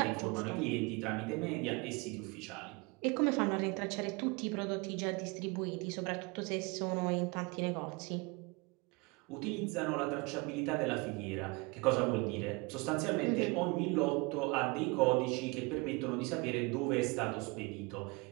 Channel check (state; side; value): quieter; left; 28.0 dB